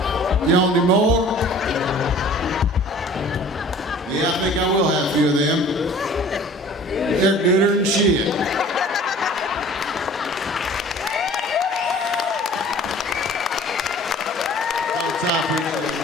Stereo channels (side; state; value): both; normal; correlation 0.48